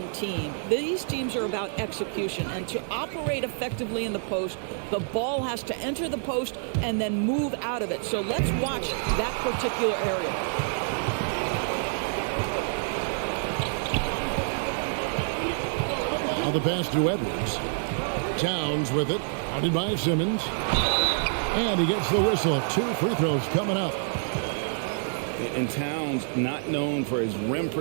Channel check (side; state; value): left; silent; digital silence